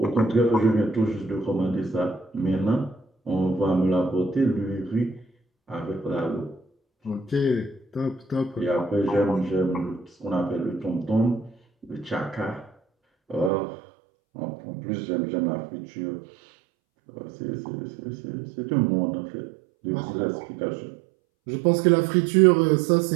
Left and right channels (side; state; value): left; drops out; at 13.5 s